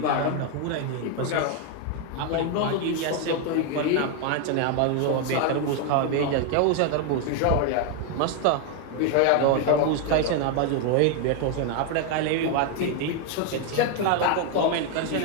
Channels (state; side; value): different; both; correlation 0.01